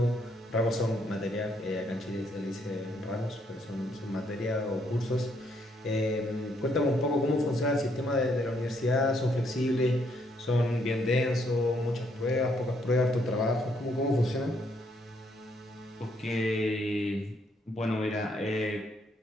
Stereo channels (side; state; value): both; normal; correlation 0.72